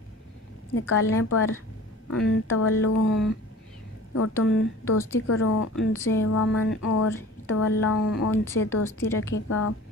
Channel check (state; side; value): normal; both; correlation 0.42